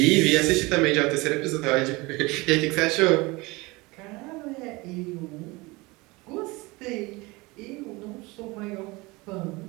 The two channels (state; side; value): quieter; left; 23.6 dB